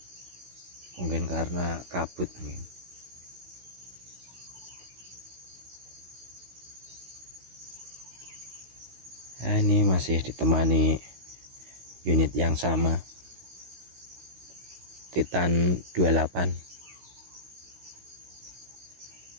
Mungkin karena kabut mungkin. Nah, ini masih ditemani unit yang sama, Titan 28.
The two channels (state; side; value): late; left; 16 ms